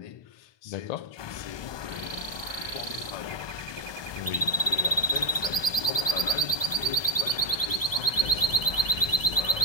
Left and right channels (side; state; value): right; late; 1.2 ms